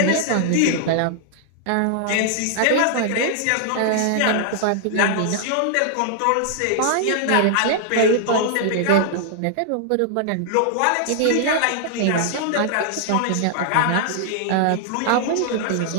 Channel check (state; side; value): different; both; correlation -0.01